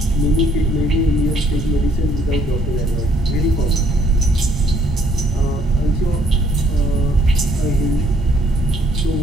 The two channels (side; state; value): both; normal; correlation 0.64